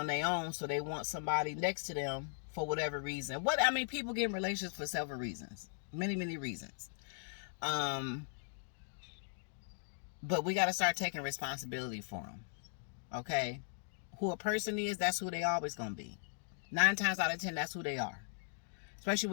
their own, so they want somebody next to them for whatever reason. People get in relationships for several reasons. Many reasons. But we got to start taking responsibility for them. Okay? Who a person is, that's who they always going to be. 9 times out of 10, that's who they are. Especially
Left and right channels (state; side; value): silent; right; digital silence